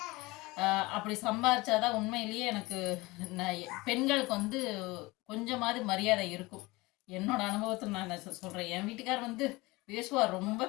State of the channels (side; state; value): right; quieter; 22.1 dB